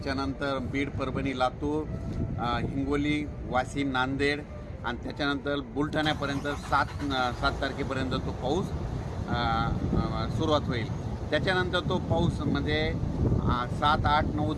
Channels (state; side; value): identical; both; correlation 1.00